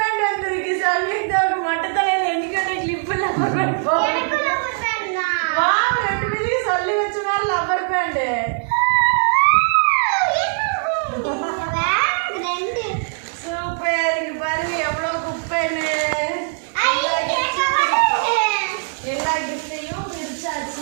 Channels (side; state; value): left; silent; 61 dB below the other